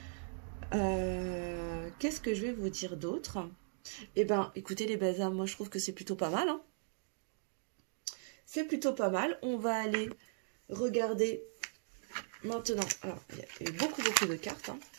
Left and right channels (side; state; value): left; silent; digital silence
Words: Qu'est-ce que je vais vous dire d'autre? Eh bien, écoutez les belles âmes, moi je trouve que c'est plutôt pas mal. Hein. C'est plutôt pas mal. On va aller regarder maintenant. Alors, il y avait beaucoup de cartes. Hein.